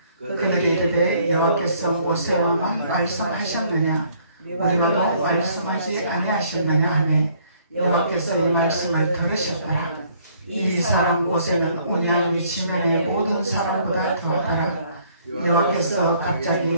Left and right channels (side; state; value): both; inverted; correlation -0.62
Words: 그들이 이르되 여호와께서 모세와만 말씀하셨느냐 우리와도 말씀하지 아니하셨느냐 하매 여호와께서 이 말씀을 들으셨더라. 이 사람 모세는 온양이 지면의 모든 사람보다 더하더라. 여호와께서 갑자기